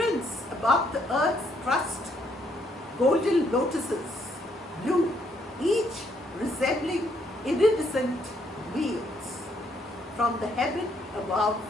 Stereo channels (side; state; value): both; normal; correlation 0.71